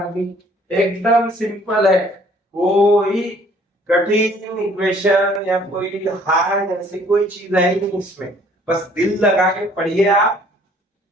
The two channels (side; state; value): both; normal; correlation 0.58